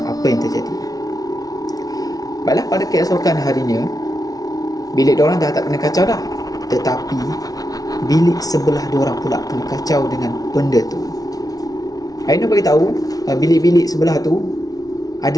apa yang terjadi. Baiklah, pada keesokan harinya bilik diorang dah tak kena kacau dah, tetapi bilik sebelah diorang pula kena kacau dengan benda tu. Ainul beritahu bilik-bilik sebelah tu ada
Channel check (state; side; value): late; right; 0.18 ms